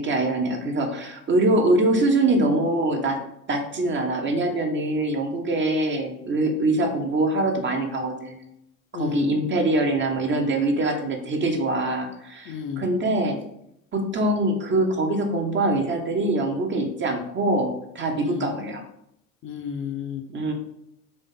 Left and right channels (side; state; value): both; normal; correlation 0.24